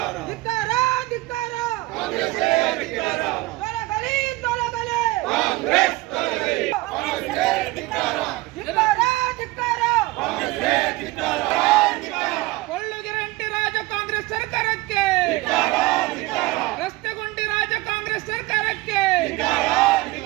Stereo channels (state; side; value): quieter; left; 20.1 dB